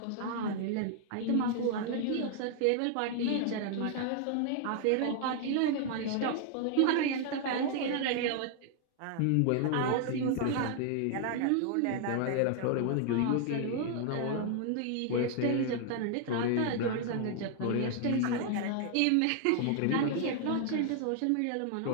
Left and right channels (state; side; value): different; both; correlation 0.00